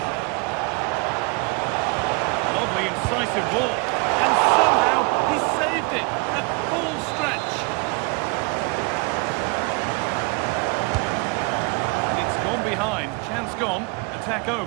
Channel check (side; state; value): left; quieter; 29.2 dB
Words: decisive ball. And somehow he saved it at full stretch. And it's gone behind. Chance gone. Attack